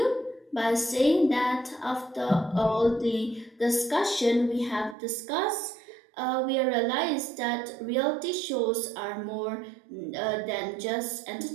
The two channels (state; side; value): drops out; left; at 5.0 s